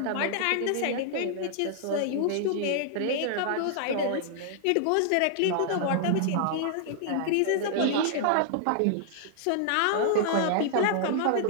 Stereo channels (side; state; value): both; different; correlation -0.01